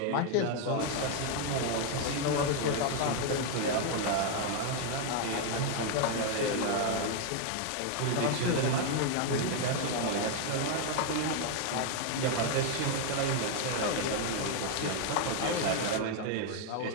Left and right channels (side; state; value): both; different; correlation 0.01